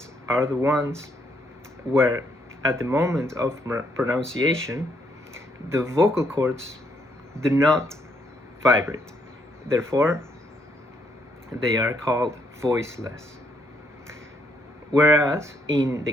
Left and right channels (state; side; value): normal; both; correlation 0.72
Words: are the ones where at the moment of pronunciation the vocal cords do not vibrate. Therefore, they are called voiceless. Whereas in the